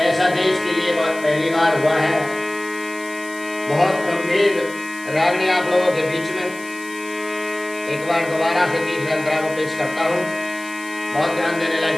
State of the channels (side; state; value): left; noise; hiss, 18 dB below the sound